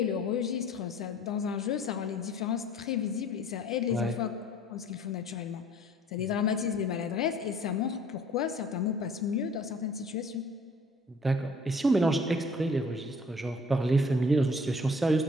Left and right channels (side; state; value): both; normal; correlation 0.53